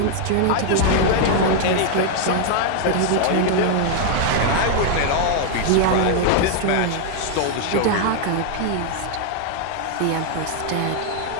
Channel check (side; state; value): both; different; correlation 0.00